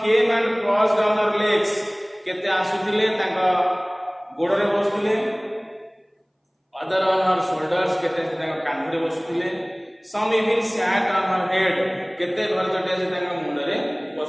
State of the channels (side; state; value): both; identical; correlation 1.00